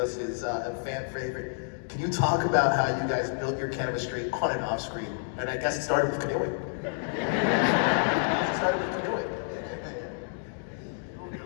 is a fan favorite. Can you talk about how you guys built your chemistry on and off screen? And I guess it started with canoeing.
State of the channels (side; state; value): right; silent; digital silence